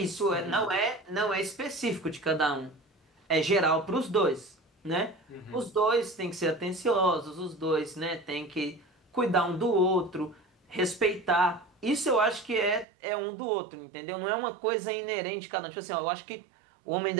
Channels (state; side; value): drops out; left; at 12.9 s